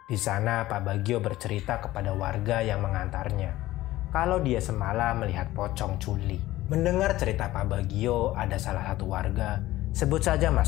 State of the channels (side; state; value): right; quieter; 16.3 dB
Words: Di sana Pak Bagio bercerita kepada warga yang mengantarnya kalau dia semalam melihat pocong culi. Mendengar cerita Pak Bagio, ada salah satu warga, sebut saja